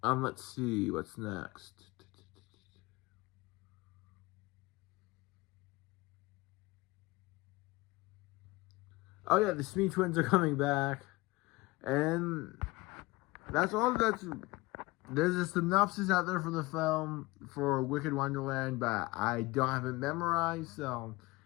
Let's see, what's next? Oh yeah, the Smee twins are coming back. And that's all there's a synopsis out there for the film for Wicked Wonderland, but I don't have it memorized, so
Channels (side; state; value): right; quieter; 22.0 dB